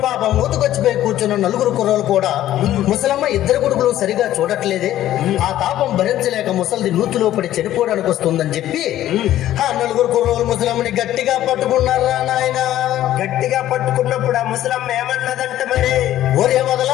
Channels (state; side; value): quieter; right; 13.1 dB